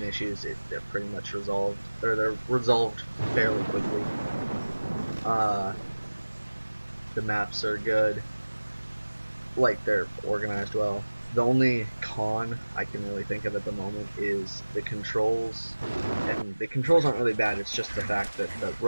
issues, they're pretty much resolved, or they're resolved fairly quickly. The maps are good, like they're organized well. The only con I can really think of at the moment is the controls, and the controls aren't really bad, it's just the fact that the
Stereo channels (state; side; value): inverted; both; correlation -1.00